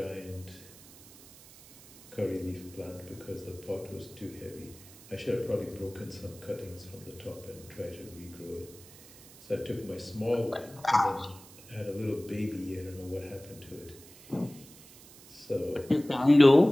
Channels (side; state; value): right; noise; hiss, 21 dB below the sound